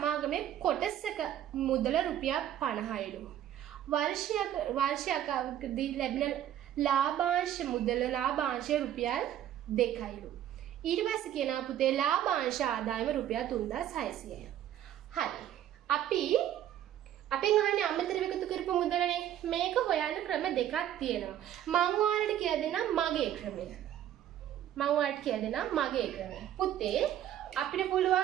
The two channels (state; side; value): quieter; left; 11.4 dB